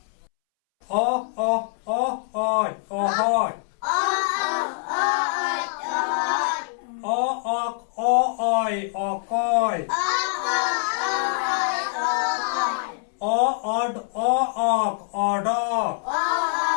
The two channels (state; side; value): silent; right; 62 dB below the other